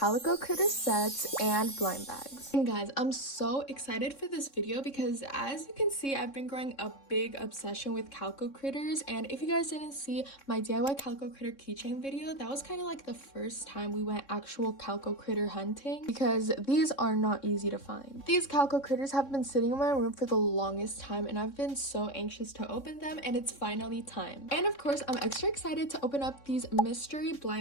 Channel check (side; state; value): right; late; 3.6 ms